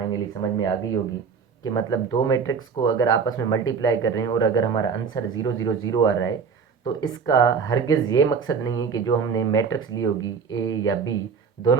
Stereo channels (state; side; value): quieter; left; 5.9 dB